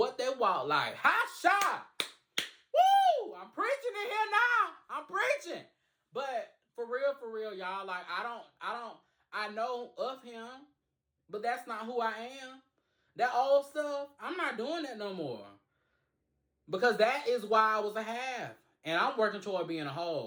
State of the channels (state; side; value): identical; both; correlation 1.00